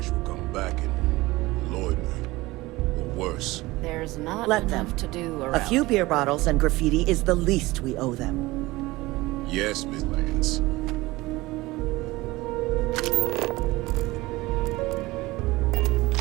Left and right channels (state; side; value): quieter; left; 20.1 dB